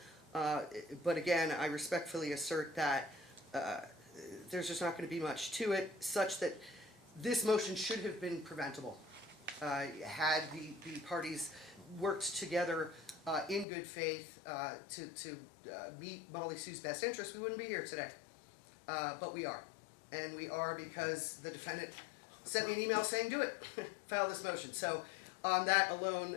But again, I respectfully assert that there's just not going to be much to it, such that this motion should have been preventable. Had the parties worked together in good faith to meet Molly Sue's best interest, we wouldn't be here today. But we are. And we are because the defendant sent me an email saying, do it, file this motion. So on that alone,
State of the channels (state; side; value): drops out; right; at 13.7 s